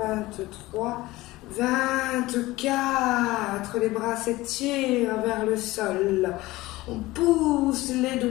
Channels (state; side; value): quieter; right; 18.9 dB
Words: 24. Les bras s'étirent vers le sol. On pousse les